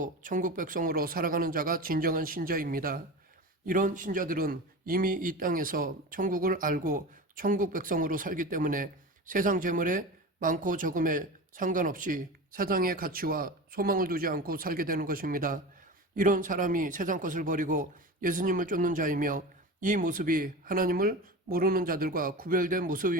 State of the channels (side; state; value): both; normal; correlation 0.29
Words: 천국 백성으로 살아가는 자가 진정한 신자입니다. 이런 신자들은 이미 이 땅에서 천국을 알고 천국 백성으로 살기 때문에 세상 재물에 많고 적음에 상관없이 세상의 가치와 소망을 두지 않고 살게 되는 것입니다. 이런 사람이 세상 것을 버리고 예수님을 쫓는 자이며 이 모습이 하나님을 모르는 자들과 구별된